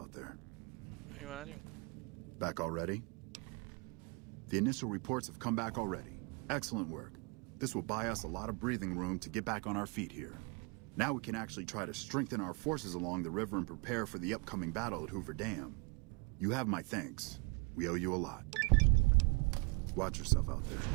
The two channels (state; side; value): quieter; left; 31.2 dB